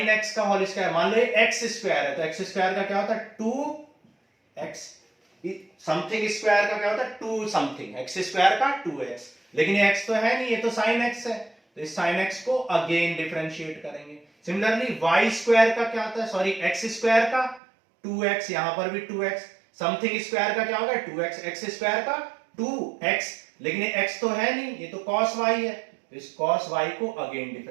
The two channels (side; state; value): left; drops out; at 17.6 s